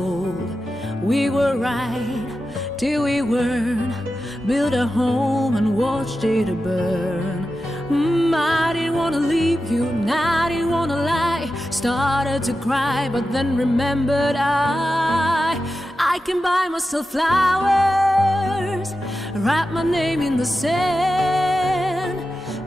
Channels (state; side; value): normal; both; correlation 0.91